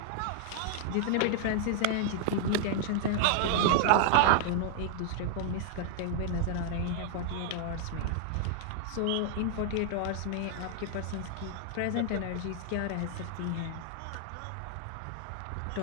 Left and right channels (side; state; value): both; different; correlation -0.01